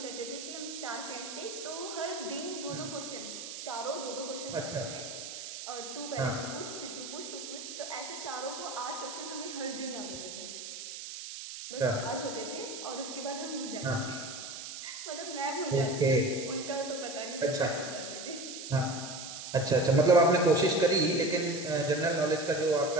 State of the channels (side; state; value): right; noise; hiss, 9 dB below the sound